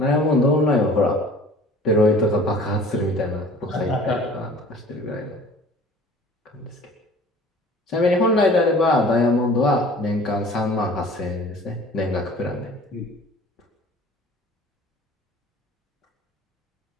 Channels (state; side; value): normal; both; correlation 0.47